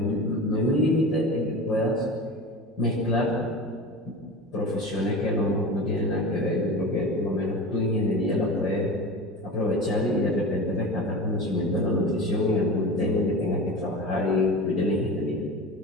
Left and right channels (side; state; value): both; normal; correlation 0.31